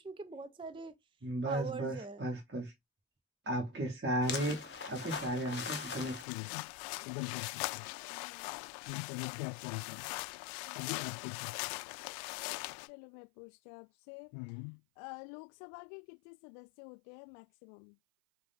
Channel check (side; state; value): right; drops out; at 6.2 s